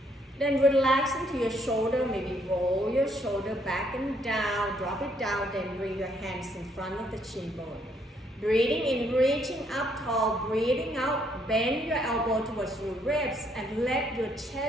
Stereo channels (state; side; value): normal; both; correlation 0.70